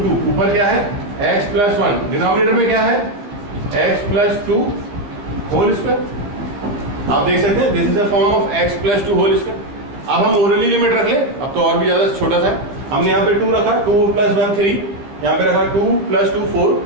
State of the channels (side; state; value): left; late; 15 ms